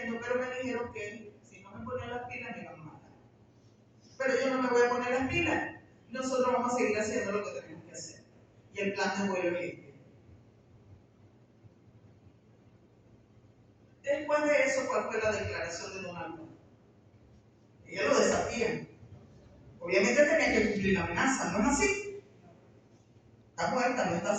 pero me dijeron que si no me ponía las pilas me iban a matar. Pero yo no me voy a poner las pilas, nosotros vamos a seguir haciendo lo que tenemos que hacer. Y el plan de vuelo es este. Después de eso, ¿cuál fue la declaración de Donald Trump? Ella lo desafía. Obviamente tenía que cumplir la amenaza, ¿no es así? Está muerta, no está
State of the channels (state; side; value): identical; both; correlation 1.00